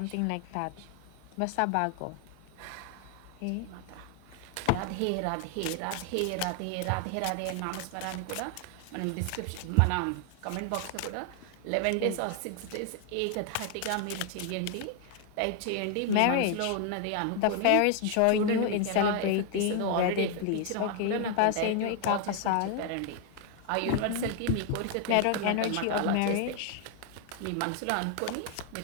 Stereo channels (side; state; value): both; different; correlation 0.00